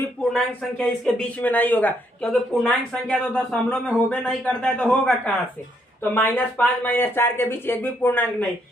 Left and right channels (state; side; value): normal; both; correlation 0.73